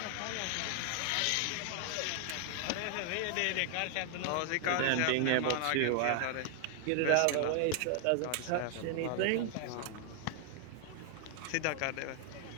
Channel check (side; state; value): both; different; correlation 0.00